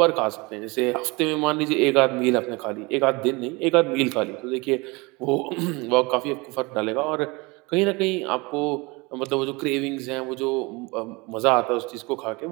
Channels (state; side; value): quieter; left; 25.7 dB